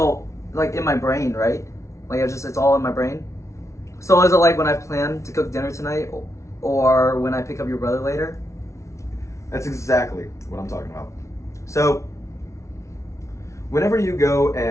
like in my brain, right? Like it's all in my brain. So is it like when I plan to cook dinner tonight, or when I pick up your brother later? That's exactly what I'm talking about. So, whenever you go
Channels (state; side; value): late; right; 0.14 ms